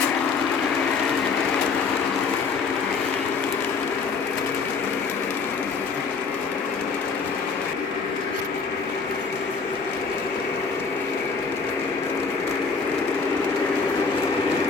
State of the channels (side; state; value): right; quieter; 5.0 dB